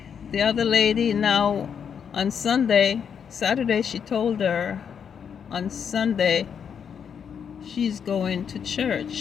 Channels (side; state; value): right; quieter; 7.4 dB